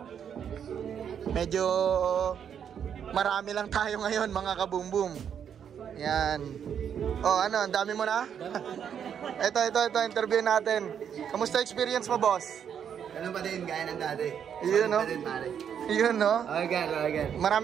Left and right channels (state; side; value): quieter; left; 8.2 dB